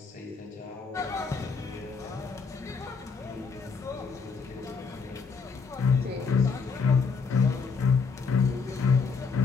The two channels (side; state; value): right; quieter; 5.1 dB